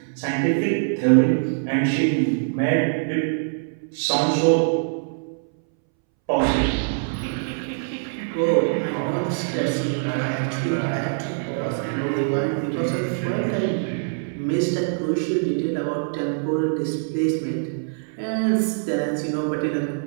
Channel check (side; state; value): left; silent; 63 dB below the other